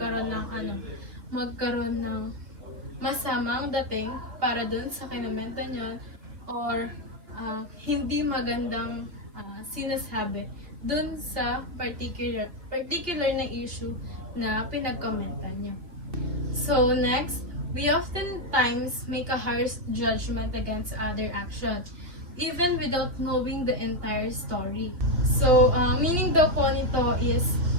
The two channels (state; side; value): late; left; 2.6 ms